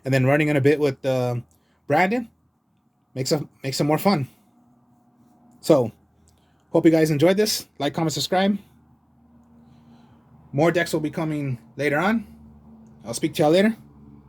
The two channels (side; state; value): both; identical; correlation 1.00